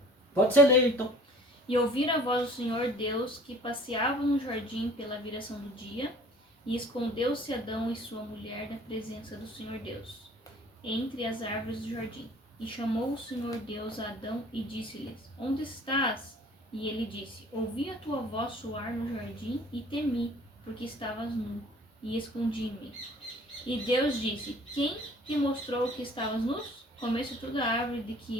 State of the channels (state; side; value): normal; both; correlation 0.50